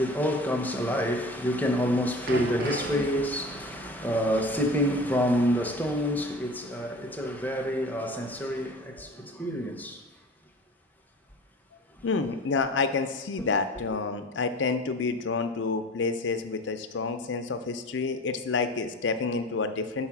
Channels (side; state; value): both; normal; correlation 0.38